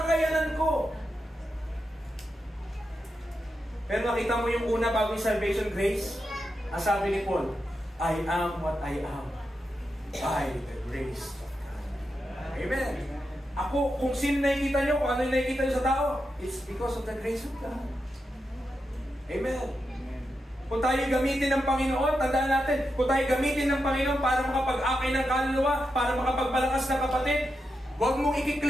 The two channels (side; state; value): both; normal; correlation 0.87